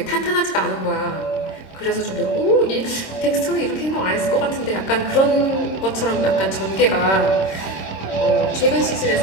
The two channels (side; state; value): right; late; 26 ms